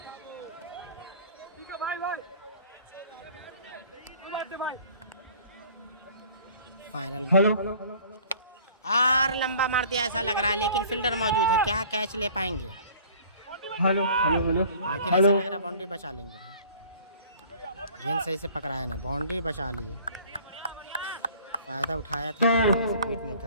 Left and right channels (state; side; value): inverted; both; correlation -0.50